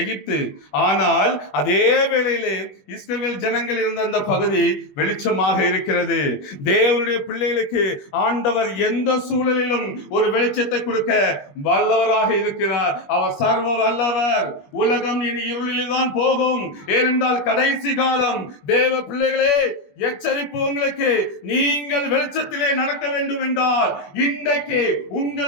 எகிப்து. ஆனால் அதே வேளையிலே இஸ்ரவேல் ஜனங்கள் இருந்த அந்த பகுதி வெளிச்சமாக இருக்கிறது. தேவனுடைய பிள்ளைகளுக்கு ஆண்டவர் எந்த சூழலிலும் ஒரு வெளிச்சத்தை கொடுக்க வல்லவராக இருக்கிறார். அவர் சர்வ வல்லவர். உலகம் இனி இருளில் தான் போகும். ஏனென்றால் கடைசி காலம். தேவ பிள்ளைகளே, எச்சரிப்பு உங்களுக்கு. நீங்கள் வெளிச்சத்திலே நடக்க வேண்டும் என்றால் இன்றைக்கு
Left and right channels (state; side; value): late; right; 21 ms